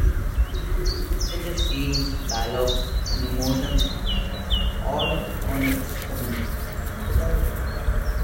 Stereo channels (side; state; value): both; identical; correlation 1.00